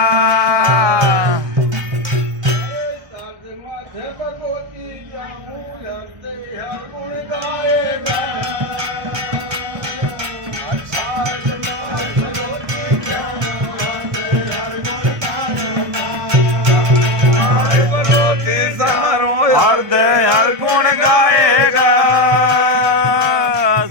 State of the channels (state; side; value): late; left; 1.2 ms